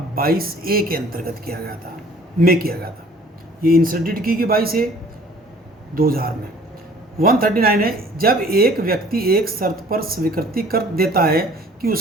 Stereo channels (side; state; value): both; normal; correlation 0.53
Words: 22A के अंतर्गत किया गया था। ये इंसर्टेड की 22A 2000 में। 139 है, जब एक व्यक्ति एक शर्त पर स्वीकृति कर देता है कि